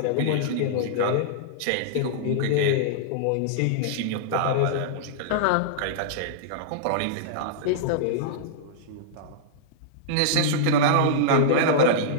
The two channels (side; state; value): both; different; correlation -0.02